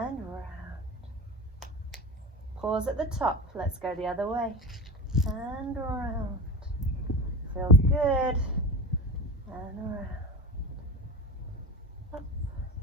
round. Pause at the top. Let's go the other way. And around. Feels good. And around. Up.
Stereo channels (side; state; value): both; normal; correlation 0.27